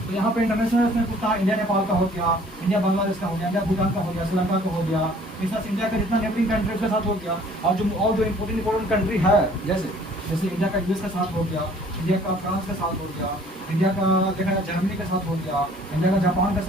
तो यहाँ पे इंटरनेशनल में पूछता है, इंडिया नेपाल का हो गया, इंडिया बांग्लादेश का हो गया, इंडिया भूटान का हो गया, श्रीलंका का हो गया, इस तरह से इंडिया का जितना नेबरिंग कंट्रीज के साथ हो गया। और जो इम्पोर्टेंट कंट्री है जैसे इंडिया का यूएस के साथ हो गया, इंडिया का फ्रांस के साथ हो गया, इंडिया का देखा जाए जर्मनी के साथ हो गया, इंडिया का जापान के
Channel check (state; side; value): normal; both; correlation 0.55